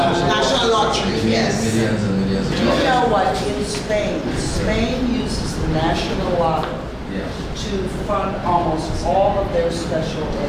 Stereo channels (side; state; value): both; identical; correlation 1.00